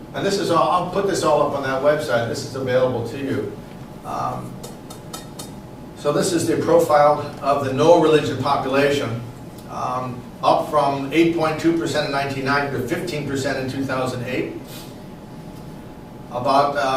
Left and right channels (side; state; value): both; identical; correlation 1.00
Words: And this is all, I'll put this all up on that website. This is available to you. So this is the profile of the no religion population, up from 8.2% in 1990 to 15% in 2008. About